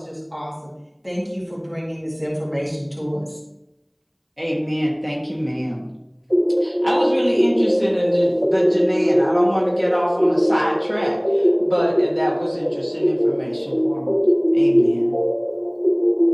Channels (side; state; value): both; identical; correlation 1.00